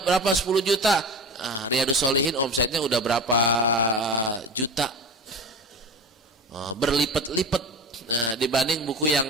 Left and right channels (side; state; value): both; normal; correlation 0.31